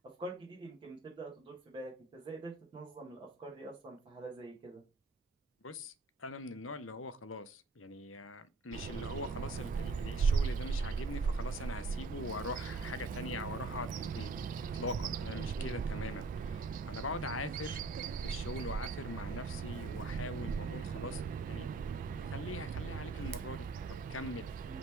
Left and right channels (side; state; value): left; quieter; 3.3 dB